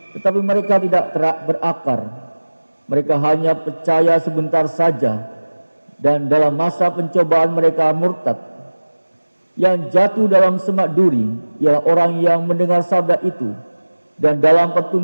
tetapi mereka tidak berakar. Mereka hanya percaya sebentar saja, dan dalam masa pencobaan mereka murtad. Yang jatuh dalam semak duri ialah orang yang mendengar sabda itu, dan dalam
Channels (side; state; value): both; inverted; correlation -1.00